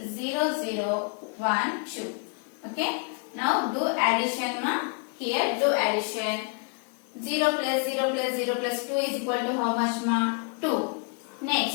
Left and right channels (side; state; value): right; quieter; 38.4 dB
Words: Okay. Now do addition, ma. Here do addition. 0 plus 0 plus 0 plus 2 is equal to how much, ma? 2.